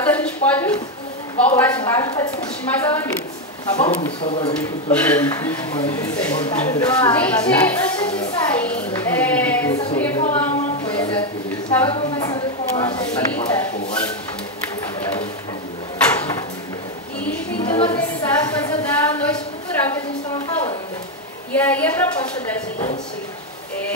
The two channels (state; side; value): normal; both; correlation 0.06